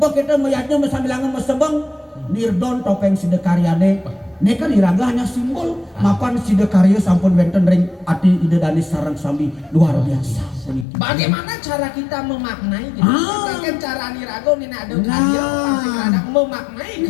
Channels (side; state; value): right; drops out; at 10.9 s